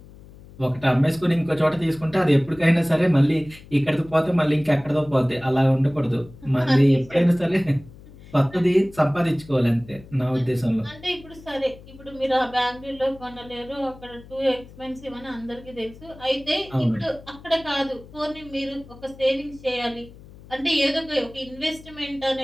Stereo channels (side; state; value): left; noise; hum, 20 dB below the sound